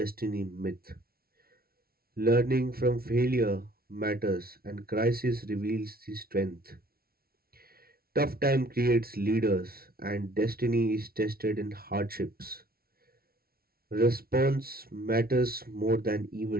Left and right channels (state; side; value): late; left; 0.44 ms